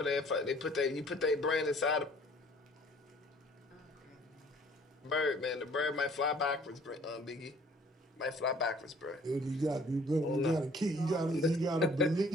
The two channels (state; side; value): normal; both; correlation 0.56